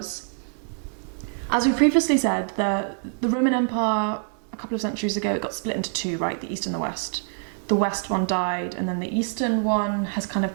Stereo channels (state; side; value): silent; left; 56 dB below the other